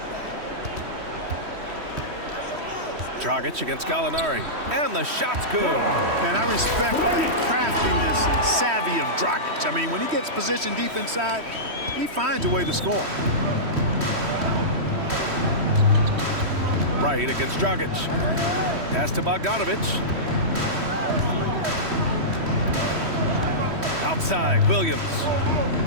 Dragic against Gallinari. And the shot's good. And I respect the craftiness and savvy of Dragic. I mean, when he gets positioned deep inside, he finds a way to score. Wright against Dragic. Pass to Bogdanovic. Outside, Williams.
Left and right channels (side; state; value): left; late; 3.1 ms